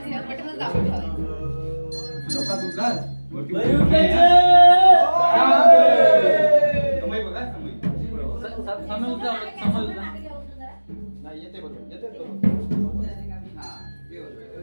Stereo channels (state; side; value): inverted; both; correlation -1.00